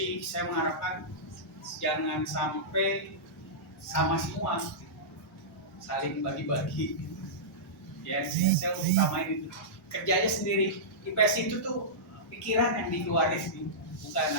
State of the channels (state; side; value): normal; both; correlation -0.15